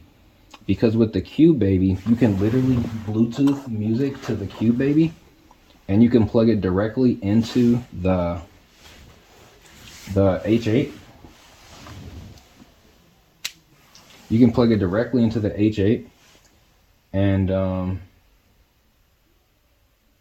Because with the Cube Baby, you can literally Bluetooth music to the Cube Baby, and you can plug it directly into the H8. You can plug it directly into the H8, and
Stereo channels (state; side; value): identical; both; correlation 1.00